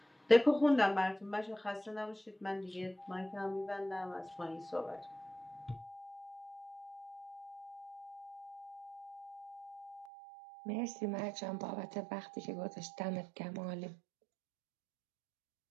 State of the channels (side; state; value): left; drops out; at 10.1 s